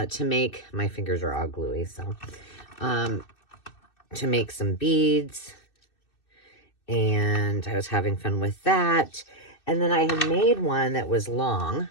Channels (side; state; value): right; late; 2.6 ms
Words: make, my fingers are all gluey, so, to make some beads. And I was having fun with that. And then I had made one that was long,